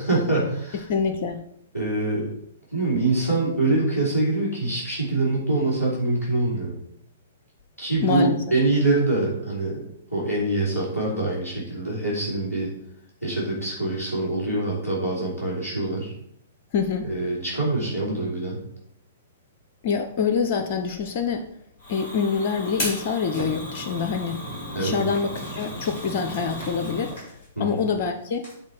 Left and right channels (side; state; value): both; inverted; correlation -0.40